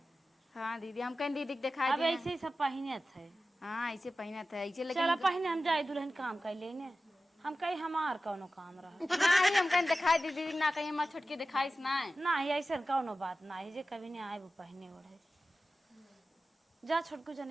हाँ दीदी हम कहीं दीदी दिखाई अब ऐसे ही सब पहिने थे। हाँ ऐसे पहना था ऐसे चलो लेकिन पहिने हम जाए दुल्हन काम कर लेने। हम कहीं हमार कौनो काम रहा नहीं हम कहीं दिखाई दी दीदी ना कहीं हमारे छुटकी दिखाई ना नहीं ऐसा कौनो बात नहीं जे कभी नहीं आए वो पहने ओढ़े। जा छोटकू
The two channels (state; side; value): normal; both; correlation 0.94